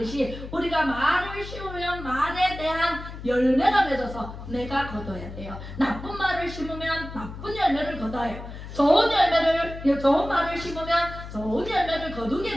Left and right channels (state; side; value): noise; left; hum, 11 dB below the sound